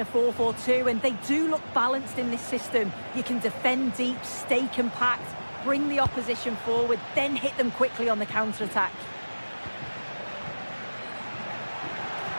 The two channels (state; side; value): inverted; both; correlation -1.00